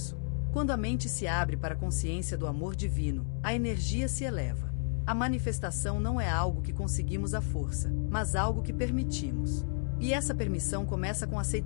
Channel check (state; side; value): silent; right; digital silence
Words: Quando a mente se abre para a consciência do amor divino, a energia se eleva. A manifestação não é algo que conseguimos à força, mas algo que permitimos. E essa permissão começa com a